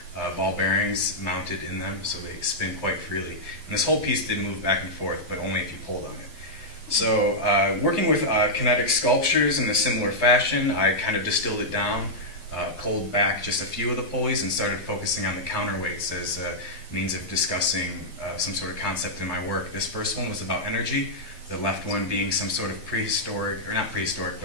ball bearings mounted in them, so they spin quite freely. And this whole piece did move back and forth, but only if you pulled on it. So working with Kinetic Sculptures in a similar fashion, I kind of distilled it down, pulled back just a few of the pulleys, and started focusing on the counterweights as a means of discussing some sort of concept in my work. This first one was about energy, the left one being some sort of prehistoric, or not prehistoric,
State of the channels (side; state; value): right; late; 11 ms